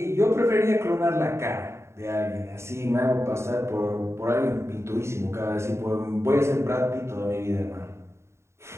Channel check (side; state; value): left; late; 0.13 ms